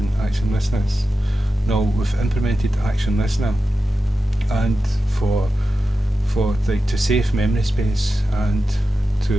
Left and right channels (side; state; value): both; normal; correlation 0.92